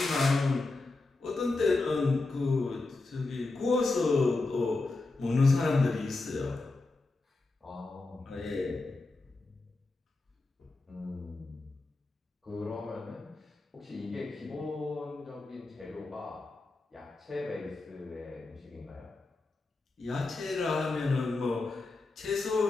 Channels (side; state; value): right; quieter; 3.4 dB